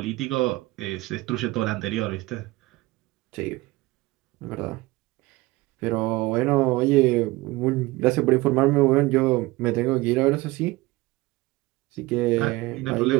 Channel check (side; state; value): left; quieter; 20.5 dB